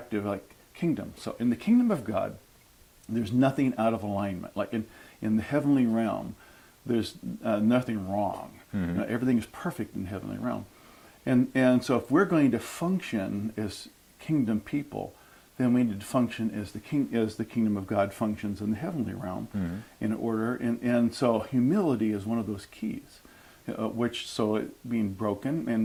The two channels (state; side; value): identical; both; correlation 1.00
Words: like kingdom. So in the kingdom of God, there's nothing out of alignment. Like in the heavenly realm, there's nothing wrong. Everything is perfect in the heavenly realm. And so if we're going to function as kingdom people, then we need to function as the kingdom of God functions in the heavenly realm in order. And so humility is one of those keys, being broken,